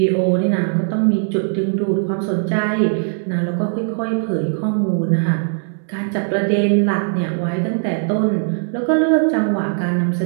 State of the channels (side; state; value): left; silent; digital silence